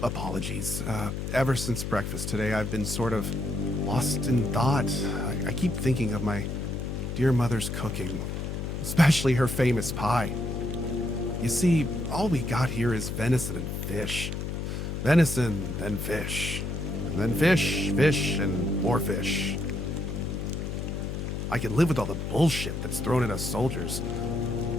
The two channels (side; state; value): left; noise; hum, 4 dB below the sound